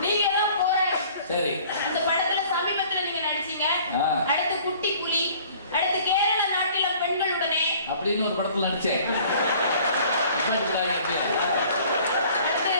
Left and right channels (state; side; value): inverted; both; correlation -0.53